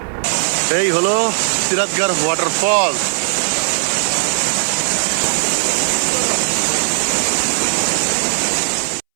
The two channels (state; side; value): silent; left; 67 dB below the other